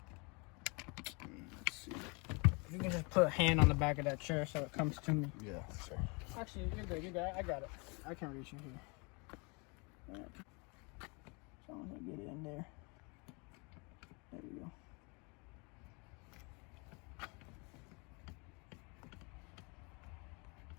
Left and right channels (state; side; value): quieter; right; 30.8 dB